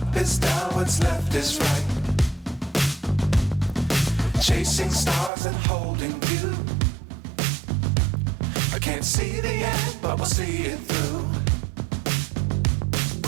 is down, what's left is right. Chasing stars and holding you. I can't see the end, but we'll see it through.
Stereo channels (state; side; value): drops out; left; at 5.3 s